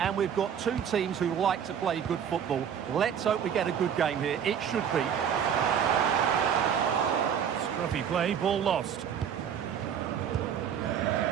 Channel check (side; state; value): left; quieter; 8.3 dB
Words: we've got two teams who like to play good football. Let's hope we get a good game here. It should be. Scruffy play, ball lost.